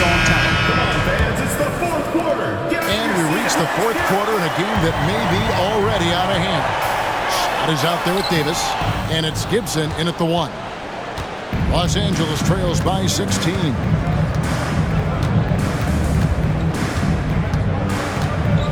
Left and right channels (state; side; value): identical; both; correlation 1.00